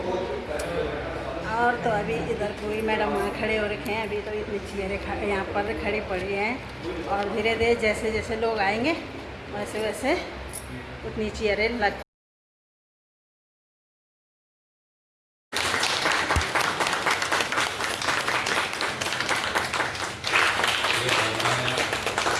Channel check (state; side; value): identical; both; correlation 1.00